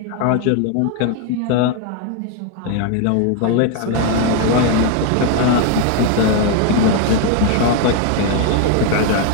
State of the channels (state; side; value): different; both; correlation 0.01